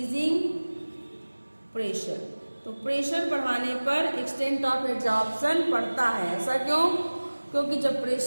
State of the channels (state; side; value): inverted; both; correlation -1.00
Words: pressure। तो प्रेशर बढ़ाने पर एक्सटेंट ऑफ एड्जॉर्प्शन बढ़ता है। ऐसा क्यों? क्योंकि जब